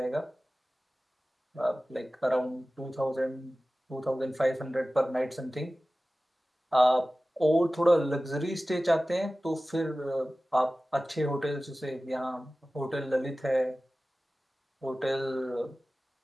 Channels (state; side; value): normal; both; correlation 0.96